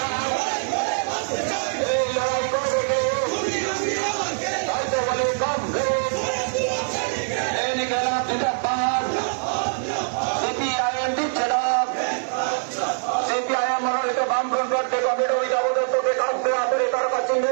সিপিআইএম দিচ্ছে না। সিপিআইএম মনোনীত বামফ্রন্ট প্রার্থী কমরেড অমিতাভ দত্তকে কাছে আসলে তার কাছে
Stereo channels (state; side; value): silent; left; digital silence